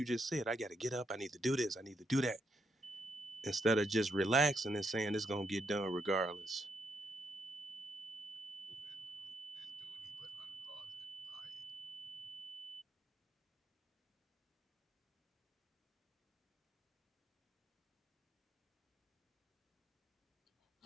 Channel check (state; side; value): normal; both; correlation 0.78